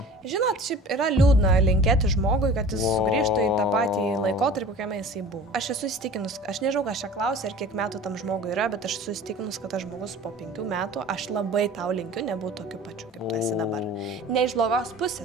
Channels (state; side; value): normal; both; correlation 0.42